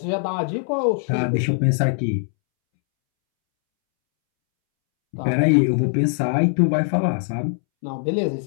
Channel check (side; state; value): right; silent; 65 dB below the other